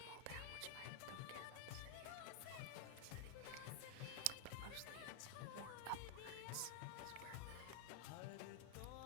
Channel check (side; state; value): both; different; correlation -0.01